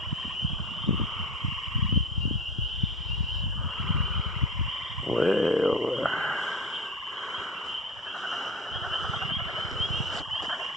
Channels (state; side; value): normal; both; correlation 0.31